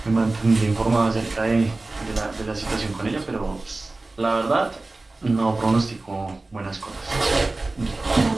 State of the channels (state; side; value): quieter; left; 3.2 dB